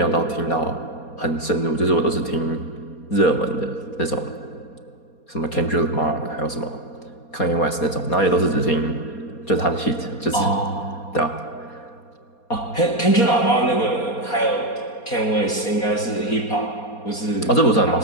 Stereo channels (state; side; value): late; right; 4.2 ms